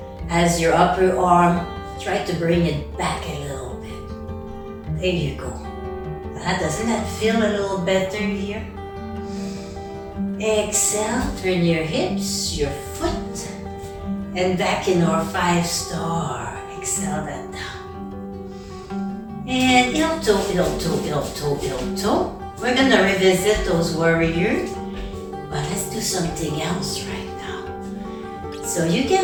as your upper arm. Try to bring it back a little bit. There you go. Doesn't that feel a little better here? Exhale, turn your hips, your foot, and back in our 5-star. Exhale that down. And heel toe, heel toe, heel toe, heel toe. We're gonna revisit those warriors, but let's do something else right now. So you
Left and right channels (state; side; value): identical; both; correlation 1.00